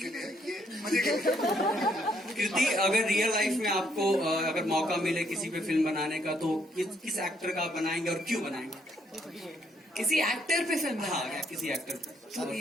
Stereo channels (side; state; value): both; normal; correlation 0.71